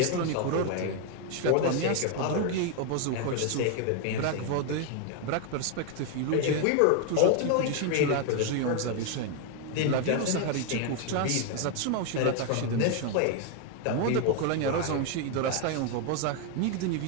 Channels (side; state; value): both; different; correlation 0.01